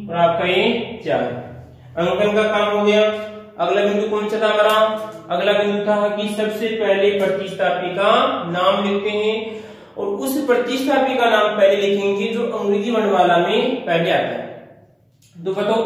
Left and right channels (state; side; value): identical; both; correlation 1.00